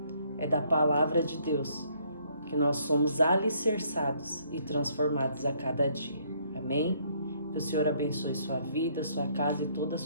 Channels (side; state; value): both; inverted; correlation -0.67